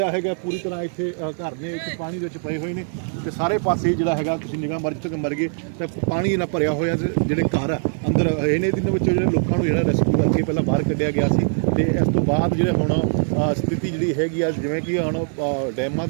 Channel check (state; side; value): silent; left; 64 dB below the other